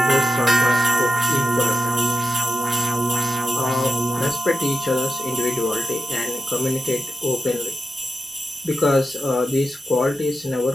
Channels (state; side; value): normal; both; correlation 0.91